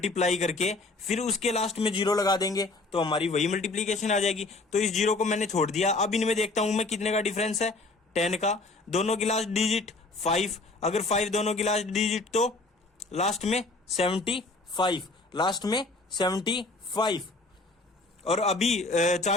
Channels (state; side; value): quieter; right; 3.3 dB